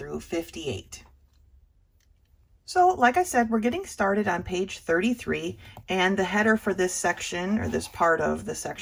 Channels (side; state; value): both; identical; correlation 1.00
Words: 58. So, like I said, we're getting started on page 33, and the header for this section, or this part of the